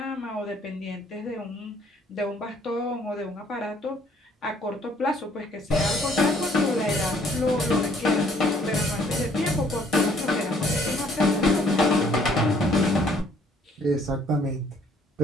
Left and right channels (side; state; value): both; normal; correlation 0.62